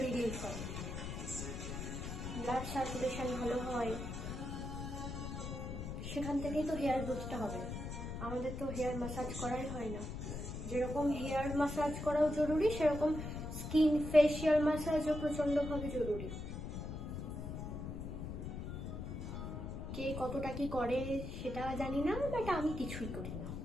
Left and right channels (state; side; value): noise; left; rumble, 6 dB below the sound